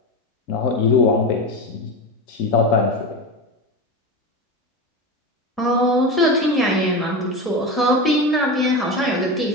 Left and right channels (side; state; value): both; normal; correlation 0.22